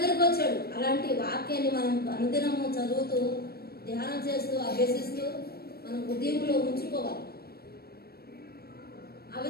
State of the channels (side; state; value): right; late; 0.45 ms